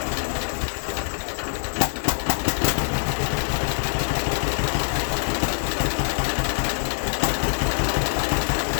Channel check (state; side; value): silent; right; digital silence